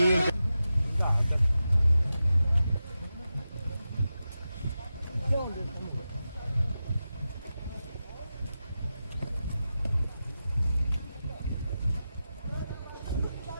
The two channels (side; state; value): both; inverted; correlation -0.91